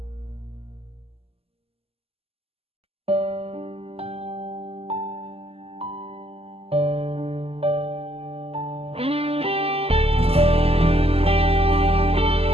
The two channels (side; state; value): left; late; 0.29 ms